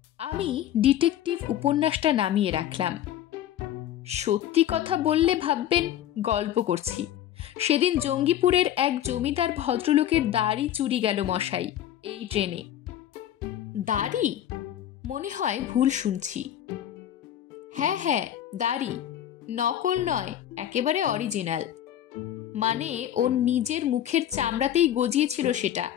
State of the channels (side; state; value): right; quieter; 11.3 dB